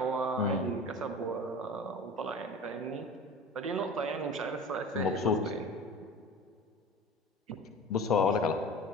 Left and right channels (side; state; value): both; normal; correlation 0.37